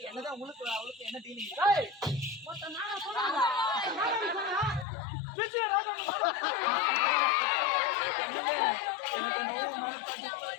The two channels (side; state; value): right; drops out; at 4.9 s